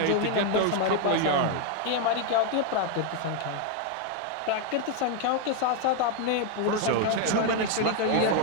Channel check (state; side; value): different; both; correlation 0.01